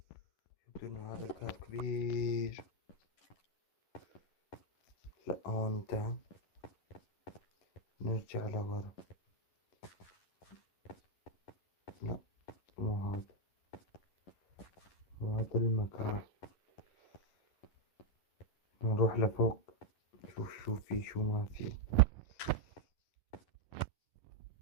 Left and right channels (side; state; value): right; late; 11 ms